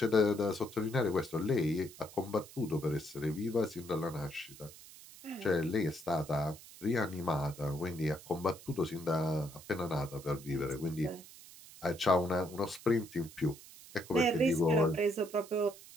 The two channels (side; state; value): right; noise; hiss, 18 dB below the sound